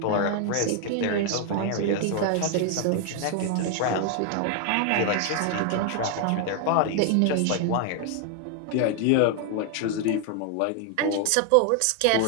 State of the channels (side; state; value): both; different; correlation 0.00